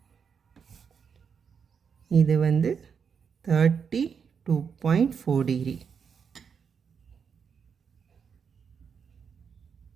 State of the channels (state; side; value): quieter; left; 6.6 dB